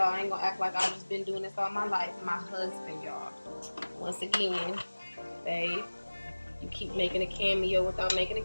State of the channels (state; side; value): inverted; both; correlation -1.00